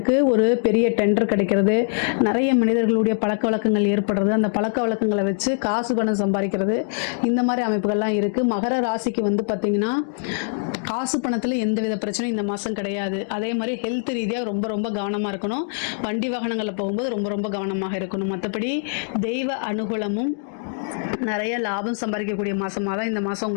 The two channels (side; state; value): right; silent; digital silence